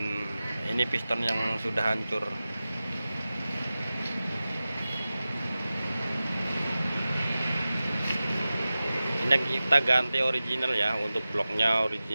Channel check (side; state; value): both; inverted; correlation -0.96